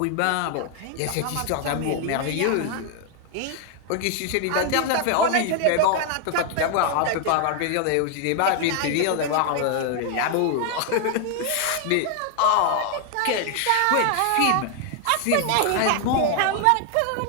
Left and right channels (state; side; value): different; both; correlation 0.00